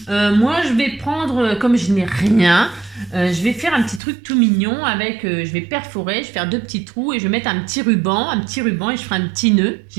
Moi, je vais prendre, comme je n'ai rien, je vais faire un petit truc tout mignon avec, je vais perforer, je vais faire 2 petits trous et je vais mettre un petit ruban et je ferai un petit nœud,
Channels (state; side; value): drops out; left; at 4.0 s